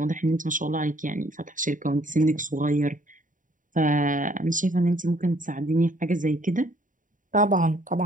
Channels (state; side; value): late; left; 0.38 ms